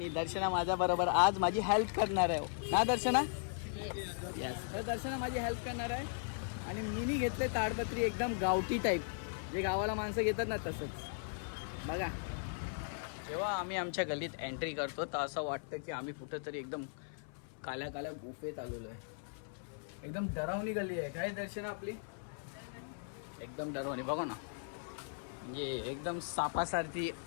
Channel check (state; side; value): silent; right; 53 dB below the other